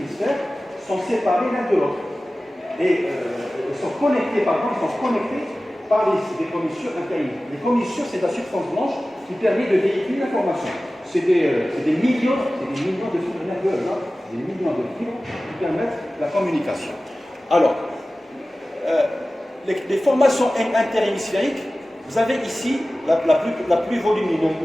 sont séparés l'un de l'autre. Et ils sont connectés par des commissures interhémisphériques. Les commissures, c'est la substance blanche qui permet de véhiculer l'information. C'est des millions de fibres nerveuses, hein, des millions de fibres qui permettent la communication. Alors, les formations interhémisphériques, vous avez ici la plus volumineuse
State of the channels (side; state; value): both; normal; correlation 0.96